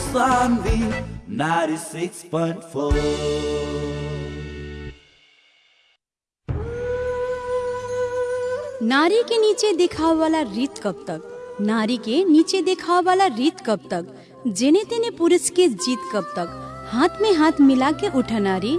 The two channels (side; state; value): both; identical; correlation 1.00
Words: 96.4। नारी के नीचे दिखावा वाला रीत कब तक, नारी के नीचे दिखावा वाला रीत कब तक, जेने तेने पुरुष के जीत कब तक, हाथ में हाथ मिला के उठा नारी